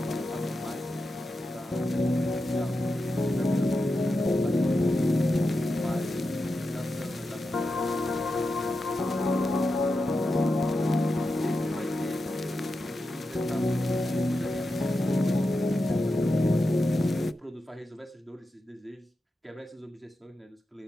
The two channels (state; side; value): normal; both; correlation 0.89